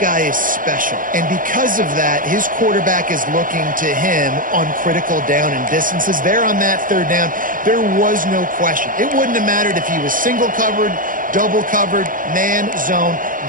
guy is special, and because of that, his quarterback is looking to him on critical down and distances. There on that third down, there was no question. It wouldn't have mattered if he was single covered, double covered, man, zone.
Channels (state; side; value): late; left; 0.40 ms